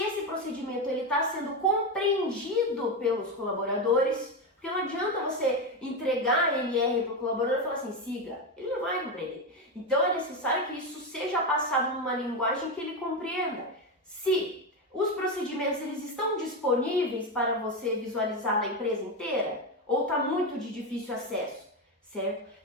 procedimento está sendo compreendido pelos colaboradores, Porque não adianta você entregar a NR para o colaborador e falar assim, siga, ele não vai compreender. Então é necessário que isso seja passado numa linguagem que ele compreenda. Se os procedimentos eles estão disponíveis para você visualizar na empresa inteira, ou está muito de difícil acesso, certo?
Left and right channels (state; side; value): normal; both; correlation 0.13